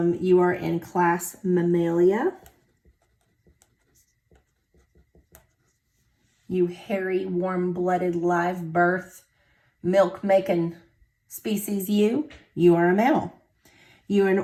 are in class Mammalia. You hairy, warm-blooded, live birth, milk-making species you are a mammal. You are in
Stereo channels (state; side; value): identical; both; correlation 1.00